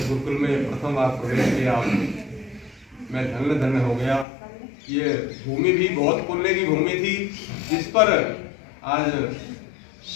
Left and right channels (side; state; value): right; drops out; at 4.2 s